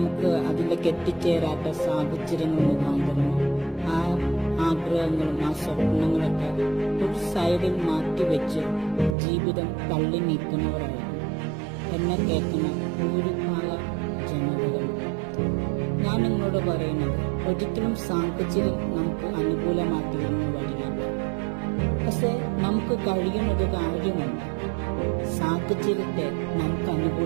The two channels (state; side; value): drops out; left; at 9.2 s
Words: അതിലേക്ക് എത്തിച്ചേരാത്ത സാഹചര്യങ്ങൾ മുഖാന്തരം ആ ആഗ്രഹങ്ങളും ആ സ്വപ്നങ്ങളൊക്കെ ഒരു സൈഡിൽ മാറ്റിവെച്ച് ജീവിതം തള്ളി നീക്കുന്നവരായിരുന്നു എന്നെ കേൾക്കുന്ന ഭൂരിഭാഗം ജനതകൾ. ഞാൻ നിങ്ങളോട് പറയുന്നത്, ഒരിക്കലും സാഹചര്യം നമുക്ക് അനുകൂലമാക്കിയെന്ന് വരികയില്ല. പക്ഷെ നമുക്ക് കഴിയുന്നത് കാര്യമുണ്ട്. സാഹചര്യത്തെ നമുക്ക്